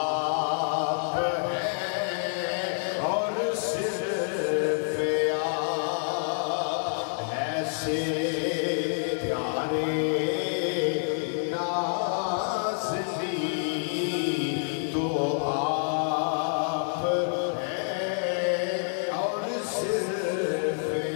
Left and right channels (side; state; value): right; silent; 59 dB below the other